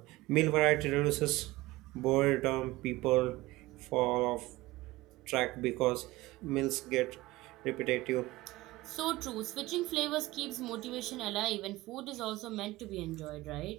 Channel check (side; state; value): left; quieter; 19.3 dB